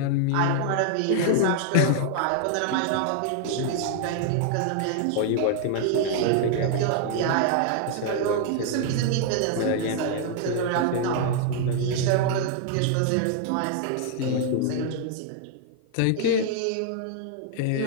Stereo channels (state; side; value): different; both; correlation 0.00